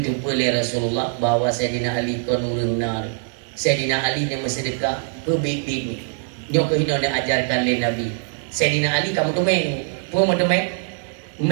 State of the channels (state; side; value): silent; left; 57 dB below the other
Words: jumpa oleh Rasulullah bahawa Sayyidina Ali kon urang nar Sayyidina Ali ni bersedekah ke bibit ni dia kena nak ajarkan oleh Nabi Sayyidina Ali kamu tumeng pun tumeng